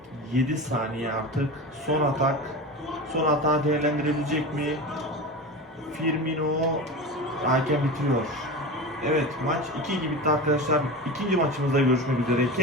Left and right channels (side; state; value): both; normal; correlation 0.28